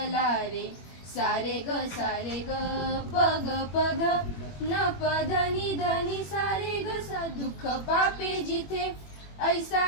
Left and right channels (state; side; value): late; right; 21 ms